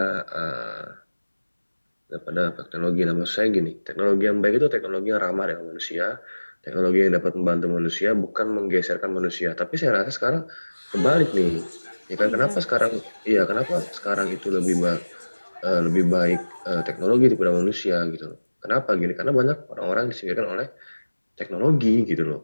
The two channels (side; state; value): both; inverted; correlation -1.00